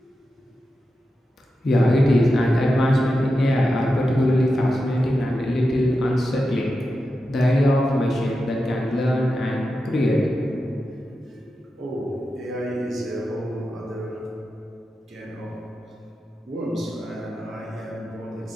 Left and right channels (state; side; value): normal; both; correlation 0.90